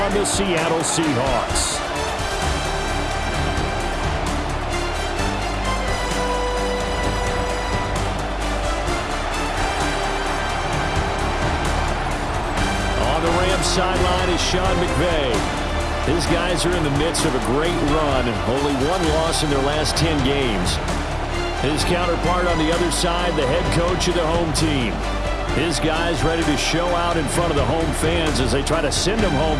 the Seattle Seahawks. Sideline is Sean McVay. His guys are in the midst of a great run, only one loss in their last 10 games. His counterpart on the other side, the head coach of the home team. His guys ready to show out in front of the home fans as they try to send them home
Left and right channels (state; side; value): identical; both; correlation 1.00